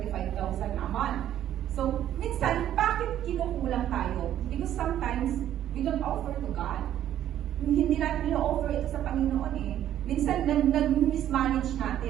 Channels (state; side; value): quieter; left; 11.5 dB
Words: a month. So, minsan, bakit kinukulang tayo? Because sometimes, we don't offer to God. Hindi natin i-offer ito sa Panginoon eh. Minsan, nag-mismanage